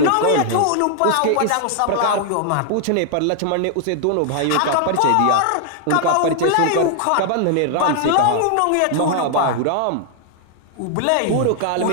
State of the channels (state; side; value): different; both; correlation 0.00